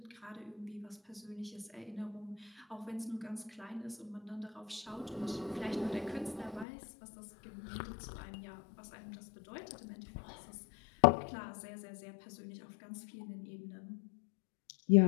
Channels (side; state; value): right; drops out; at 6.7 s